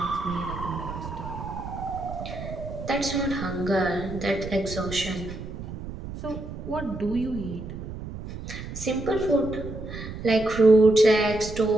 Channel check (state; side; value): noise; right; rumble, 9 dB below the sound